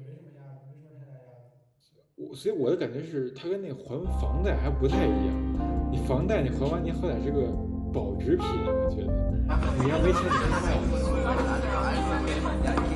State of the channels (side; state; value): both; identical; correlation 1.00